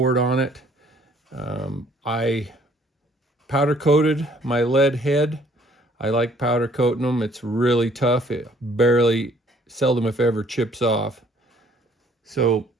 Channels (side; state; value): both; normal; correlation 0.60